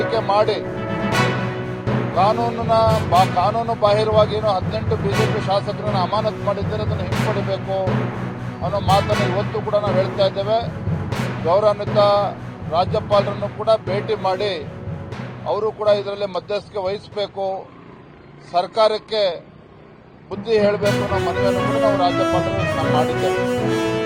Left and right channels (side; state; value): both; identical; correlation 1.00